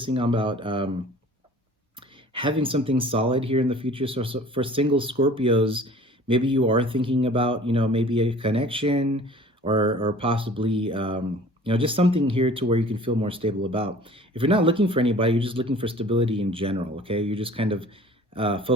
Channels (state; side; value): normal; both; correlation 0.47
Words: on about having something solid here in the future. So for single Scorpios, maybe you are thinking about, maybe a connection or possibly, just something here to where you can feel more stable about. If you're not looking for anybody, you're just looking for stability in general, okay? You're just kind of